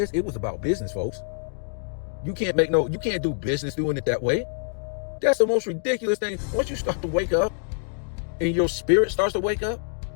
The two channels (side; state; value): right; silent; digital silence